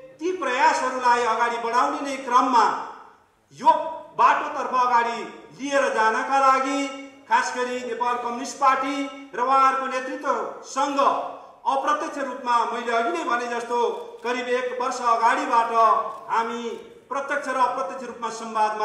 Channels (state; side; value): identical; both; correlation 1.00